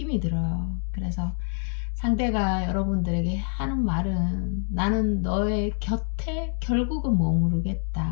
들어요. 그래서 상대가 여러분들에게 하는 말은, 나는 너의 곁에 결국은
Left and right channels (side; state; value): right; silent; digital silence